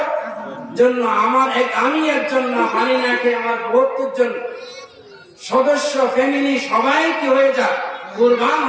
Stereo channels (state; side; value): identical; both; correlation 1.00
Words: জন্য। আমি একজন না, পানি না খেয়ে আমার 72 জন সদস্য ফ্যামিলি সবাই কি হয়ে যাক, কুরবান